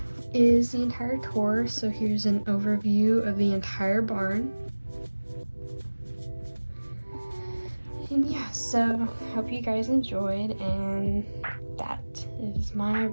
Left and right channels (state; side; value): inverted; both; correlation -1.00